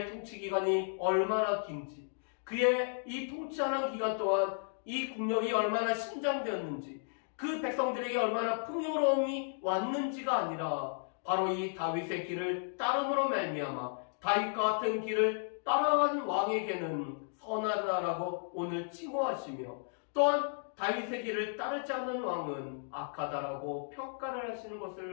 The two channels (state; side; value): silent; right; digital silence